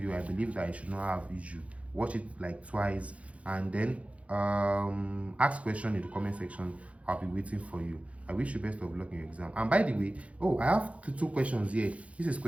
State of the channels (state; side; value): late; left; 0.064 ms